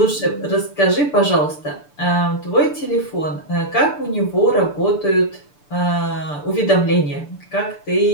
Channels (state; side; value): late; right; 6.8 ms